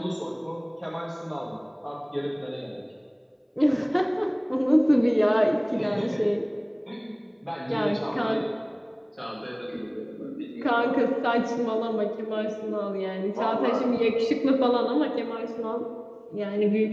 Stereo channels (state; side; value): identical; both; correlation 1.00